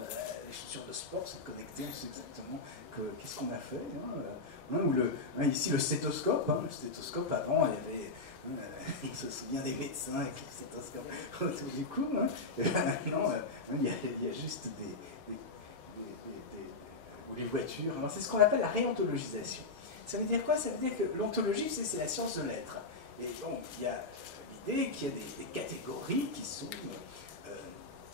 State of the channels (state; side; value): quieter; right; 3.5 dB